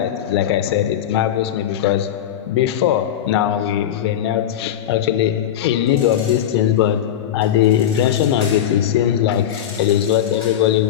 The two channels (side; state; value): right; quieter; 10.5 dB